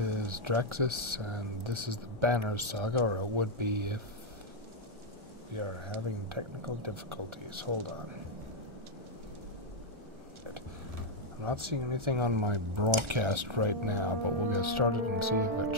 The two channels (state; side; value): late; left; 1.4 ms